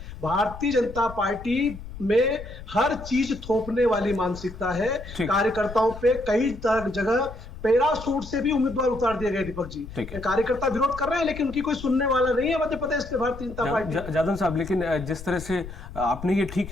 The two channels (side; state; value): left; noise; rumble, 13 dB below the sound